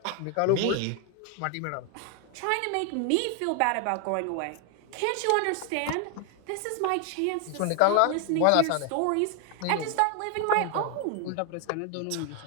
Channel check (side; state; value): both; different; correlation 0.00